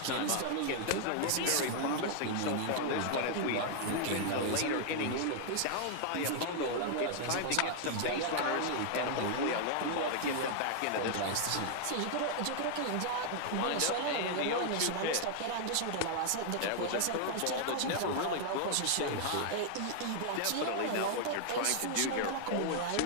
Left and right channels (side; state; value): both; different; correlation -0.01